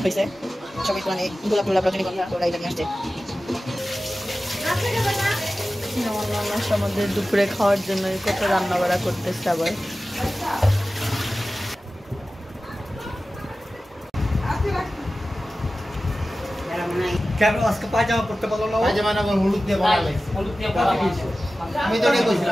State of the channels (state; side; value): normal; both; correlation 0.95